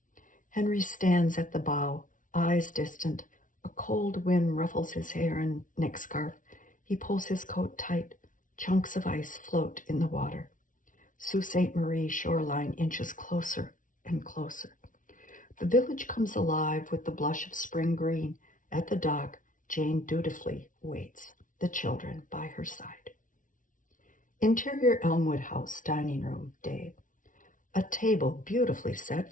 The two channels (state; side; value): late; right; 0.38 ms